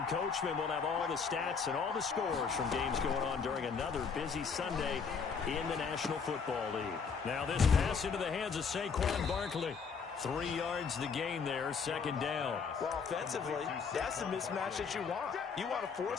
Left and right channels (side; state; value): right; quieter; 5.7 dB